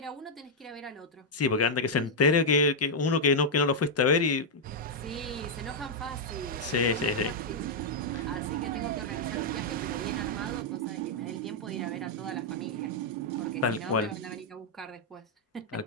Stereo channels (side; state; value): both; normal; correlation -0.04